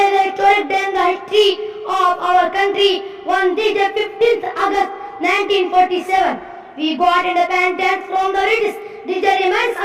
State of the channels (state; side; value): identical; both; correlation 1.00